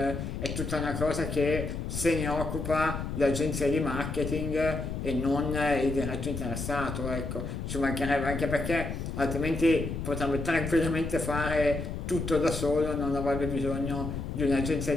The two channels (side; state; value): left; noise; rumble, 5 dB below the sound